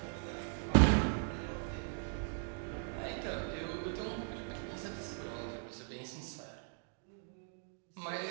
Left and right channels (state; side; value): silent; left; 52 dB below the other